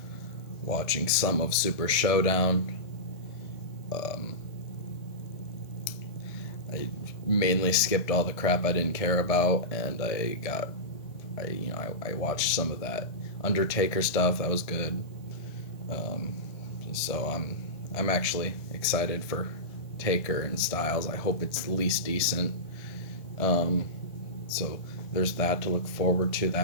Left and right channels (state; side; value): late; right; 1.7 ms